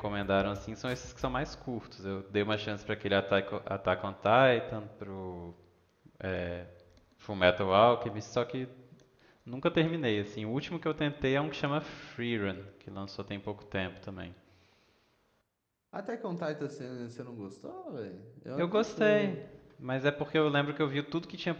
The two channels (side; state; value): both; identical; correlation 1.00